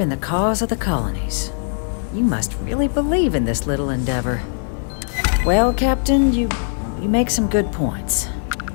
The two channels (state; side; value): silent; right; 66 dB below the other